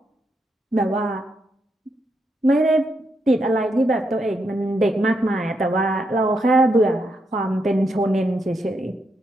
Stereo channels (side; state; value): both; normal; correlation 0.81